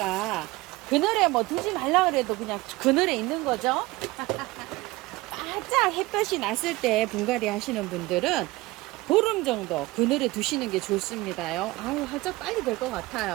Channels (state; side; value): quieter; left; 20.5 dB